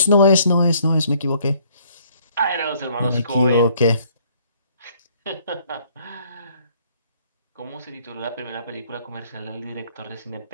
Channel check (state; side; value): inverted; both; correlation -0.62